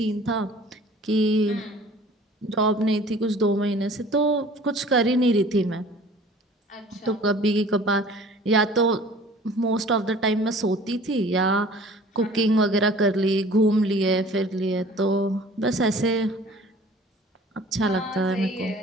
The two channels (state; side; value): normal; both; correlation 0.48